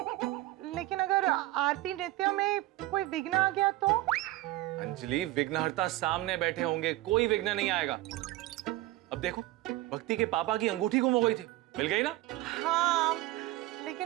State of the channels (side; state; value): left; quieter; 17.3 dB